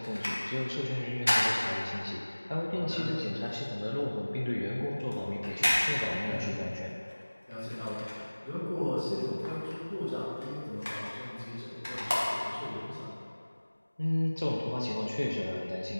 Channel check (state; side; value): inverted; both; correlation -1.00